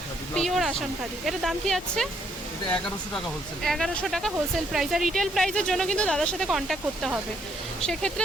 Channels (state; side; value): normal; both; correlation 0.71